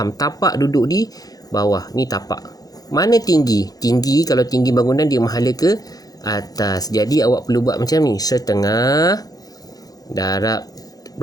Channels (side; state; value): right; late; 0.18 ms